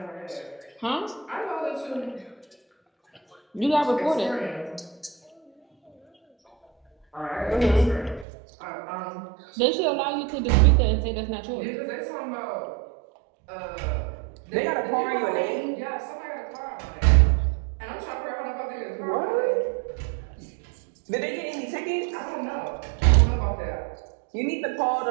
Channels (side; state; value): left; drops out; at 8.2 s